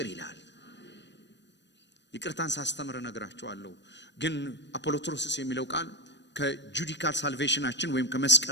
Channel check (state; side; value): late; right; 0.52 ms